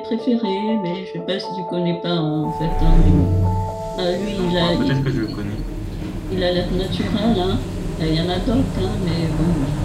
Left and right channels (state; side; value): identical; both; correlation 1.00